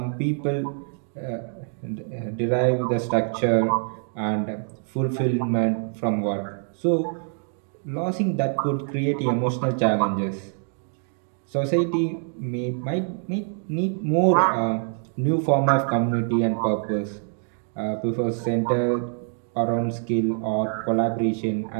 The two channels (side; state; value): left; silent; 55 dB below the other